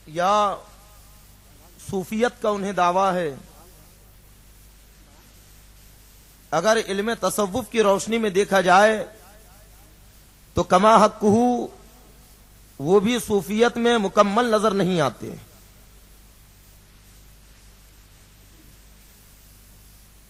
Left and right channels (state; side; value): identical; both; correlation 1.00